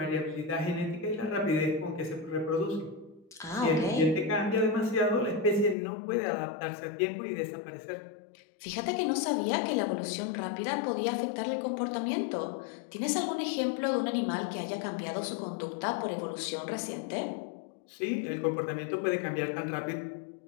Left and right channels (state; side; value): drops out; right; at 5.8 s